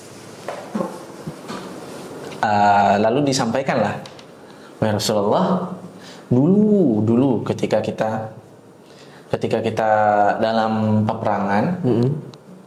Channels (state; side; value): identical; both; correlation 1.00